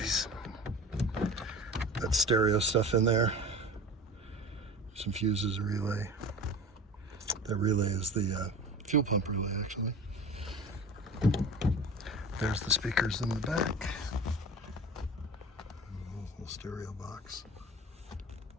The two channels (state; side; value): normal; both; correlation 0.36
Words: That stereo stuff in there. Some fuses, a relay. That relay is the fuel pump relay, actually. There's the speakers in the back. Little stereo box.